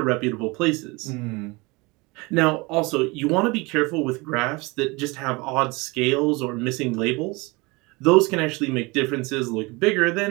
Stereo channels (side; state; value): left; quieter; 25.4 dB